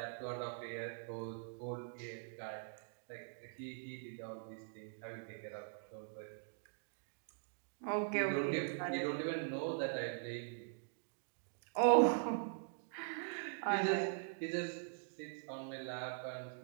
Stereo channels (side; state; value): left; silent; digital silence